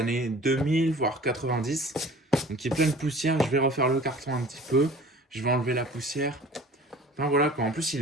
2000, voire 90. Donc il est plein de poussière. Je vais refaire le carton un petit peu. Je vais enlever la poussière. Enfin voilà quoi, en plus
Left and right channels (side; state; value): both; normal; correlation 0.45